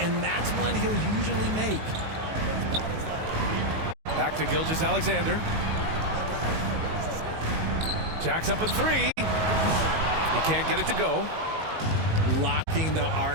that's one he'll usually make. Back to Gilgeous-Alexander. Jacks up a three. He can't get it to go. Locking the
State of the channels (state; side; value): late; left; 19 ms